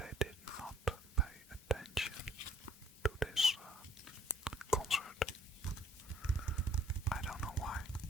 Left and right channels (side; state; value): both; normal; correlation 0.60